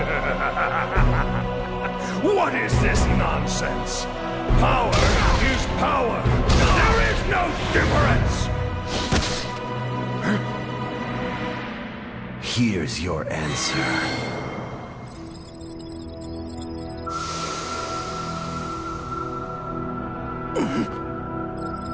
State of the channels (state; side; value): identical; both; correlation 1.00